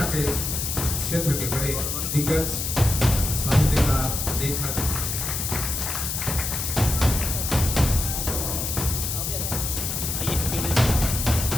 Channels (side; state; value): left; noise; hiss, 2 dB below the sound